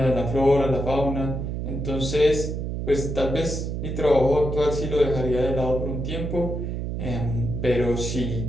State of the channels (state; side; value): noise; right; hum, 3 dB below the sound